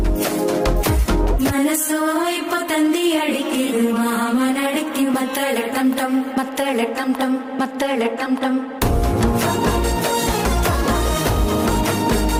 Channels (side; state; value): both; identical; correlation 1.00